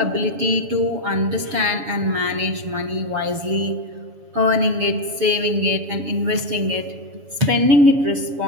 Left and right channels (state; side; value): late; left; 7.1 ms